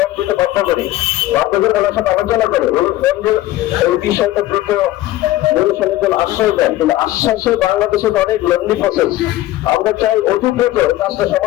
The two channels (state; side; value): quieter; right; 15.7 dB